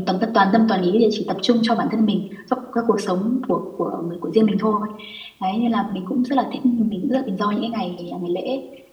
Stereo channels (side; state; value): both; identical; correlation 1.00